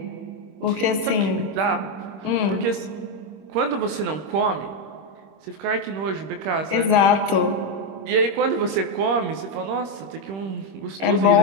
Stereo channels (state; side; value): late; left; 26 ms